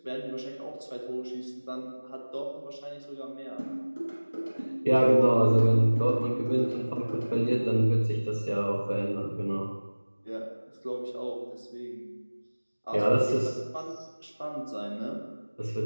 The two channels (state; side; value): inverted; both; correlation -1.00